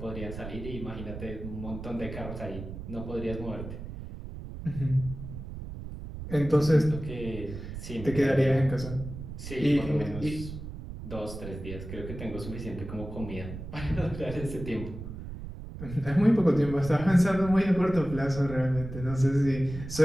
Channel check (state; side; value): noise; right; rumble, 10 dB below the sound